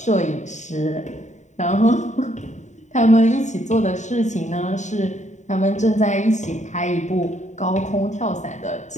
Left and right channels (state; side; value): late; right; 0.34 ms